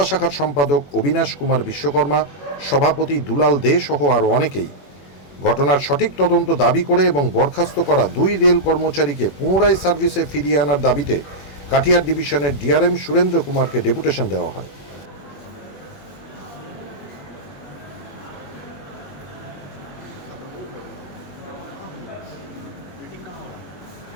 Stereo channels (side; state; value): right; late; 21 ms